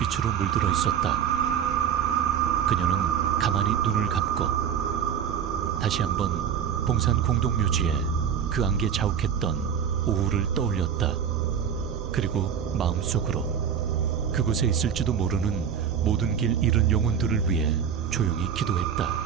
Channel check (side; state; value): left; quieter; 8.2 dB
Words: 물들어 있었다. 그녀는 가만히 눈을 감고 다시 한번 봉산 공동묘지에 그 안개 자욱했던 오후를 떠올렸다. 그리고 마음속으로 그곳에 있을지도 모르는 모든 길 잃은 영혼들을 위해 조용히 기도했다.